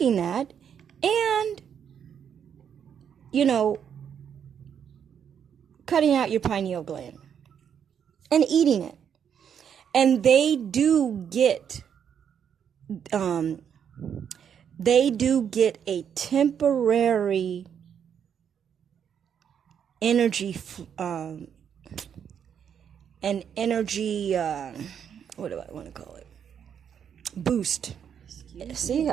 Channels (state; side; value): quieter; left; 8.2 dB